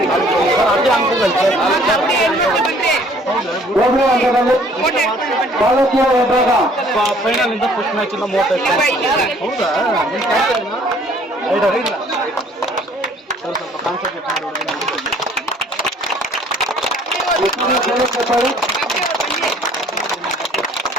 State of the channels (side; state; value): both; normal; correlation 0.57